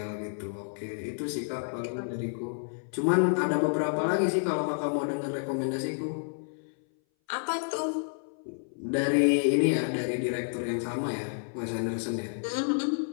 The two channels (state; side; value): silent; right; 58 dB below the other